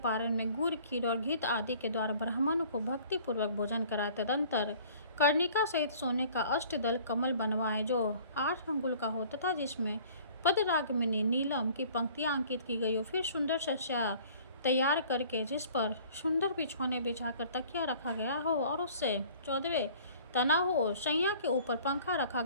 में गुड़, खीर और घृत आदि के द्वारा ब्राह्मणों को भक्तिपूर्वक भोजन कराए। तदंतर कर्णिका सहित सोने का अष्टदल कमल बनवाएं जो 8 अंगुल का हो तथा जिसमें पदरागमनी नीलम की पंक्तियां अंकित की गई हो। फिर सुंदर शस्या तैयार करके जिस पर सुंदर बिछौने बिछाकर तकिया रखा गया हो और उससे 14वें तना हो, शैया के ऊपर पंखा रखा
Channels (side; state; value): both; inverted; correlation -0.51